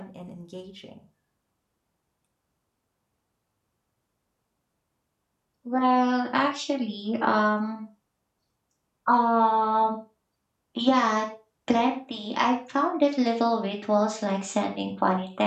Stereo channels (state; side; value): identical; both; correlation 1.00